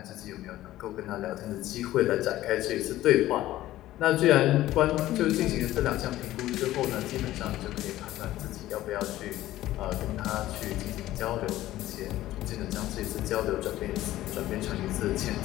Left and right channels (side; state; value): right; quieter; 15.0 dB